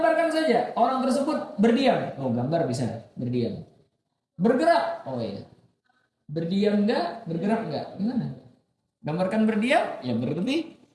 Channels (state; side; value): identical; both; correlation 1.00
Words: saja orang tersebut berdiam. Oh, gambar bisa berdiam. Bergerak. Oh iya. Berdiam nggak, bergerak nggak? Gimana? Gambarkan berdiam, ya berarti